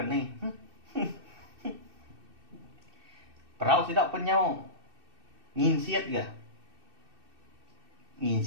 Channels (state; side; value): late; left; 2.6 ms